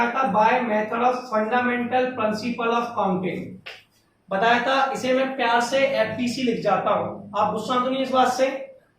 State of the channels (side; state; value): both; identical; correlation 1.00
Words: था, by method of fundamental principle of counting बताया था, इसे मैं प्यार से एफपीसी लिख जाता हूं, आप गुस्सा तो नहीं इस बात से,